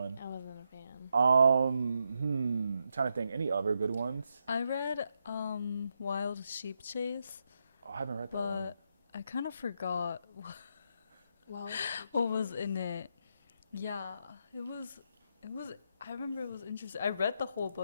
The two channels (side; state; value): both; inverted; correlation -0.82